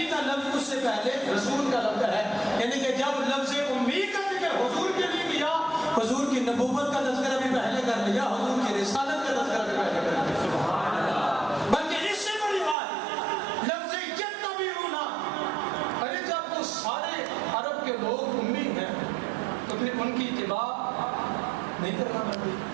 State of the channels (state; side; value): drops out; left; at 12.8 s